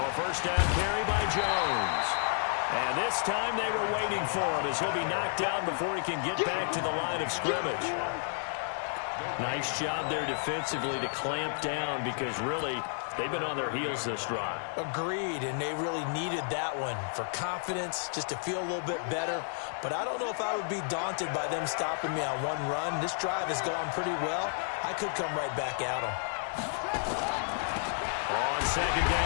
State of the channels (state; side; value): silent; right; digital silence